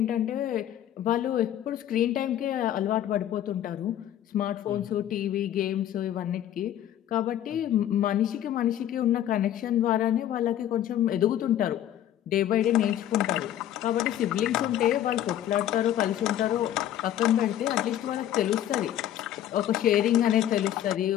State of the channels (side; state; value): right; quieter; 11.5 dB